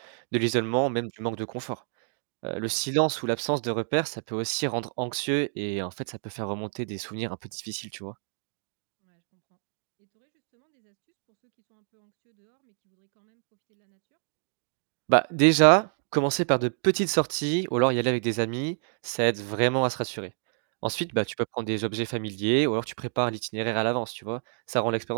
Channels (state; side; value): silent; left; digital silence